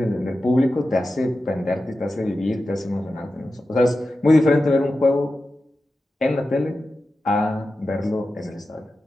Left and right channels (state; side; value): normal; both; correlation 0.92